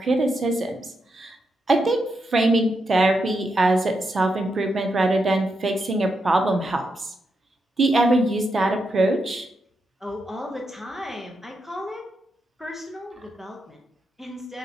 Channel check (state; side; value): normal; both; correlation 0.84